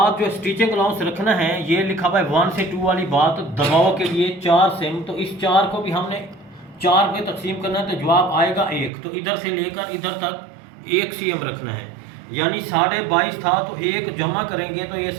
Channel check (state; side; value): drops out; left; at 8.9 s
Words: जो स्टिचिंग अलाउंस रखना है, ये लिखा हुआ है 1 से 2 वाली बात, दबाव के लिए 4 सिम, तो इस 4 को भी हमने 4 पे तकसीम करना है, तो जवाब आएगा 1। तो इधर से लेकर इधर तक 1 cm रखना है, यानी 22.5 था तो 1 जमा करेंगे तो ये